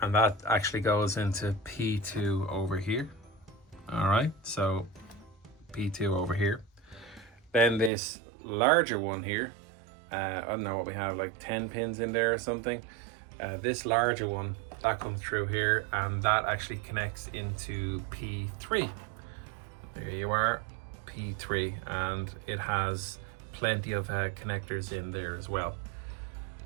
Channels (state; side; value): drops out; left; at 7.9 s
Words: and that actually goes into P2 over here. All right, so P2 over here. Then this larger one here, I don't know what we have, like 10 pins in there or something. This larger one, that comes through here, and that actually connects into P3. There you are, P3, and it has plenty of connectors in there as well.